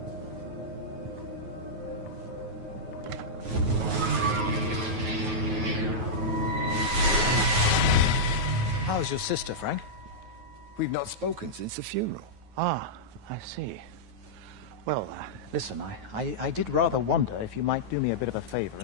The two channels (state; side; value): late; left; 9.3 ms